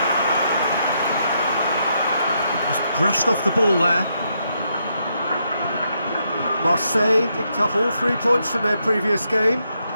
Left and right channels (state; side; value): inverted; both; correlation -0.79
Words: Just brushed off the ball there. Marseille picked up all 3 points from their previous game.